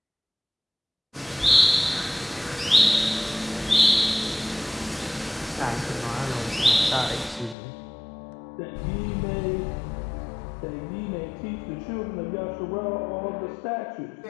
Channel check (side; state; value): right; drops out; at 7.6 s